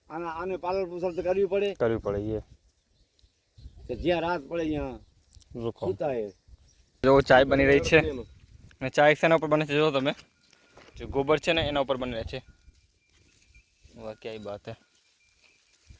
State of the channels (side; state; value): both; identical; correlation 1.00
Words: આને પાલન પોષણ તો કરવી પડે. કરવી પડે એ. કે જ્યાં રાત પડે ત્યાં રૂકો. સૂતા હે. જો ચાય બની રહી છે અને ચાય શેના ઉપર બને છે જો તમે, જે ગોબર છે ને એના ઉપર બની રહે છે. વાહ ક્યાંય બાત હે.